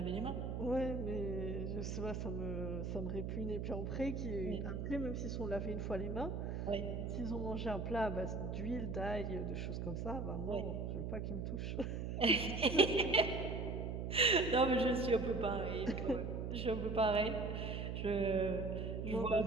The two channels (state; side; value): noise; right; hum, 3 dB below the sound